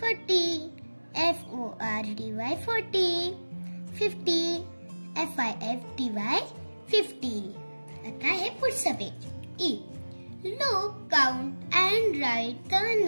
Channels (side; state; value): both; inverted; correlation -1.00